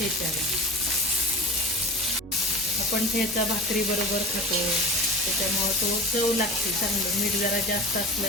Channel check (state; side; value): normal; both; correlation 0.34